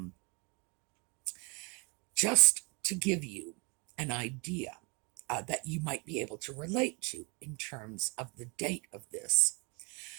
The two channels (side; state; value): left; quieter; 31.2 dB